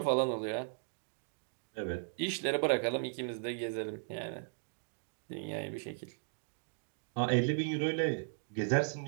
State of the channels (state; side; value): silent; left; digital silence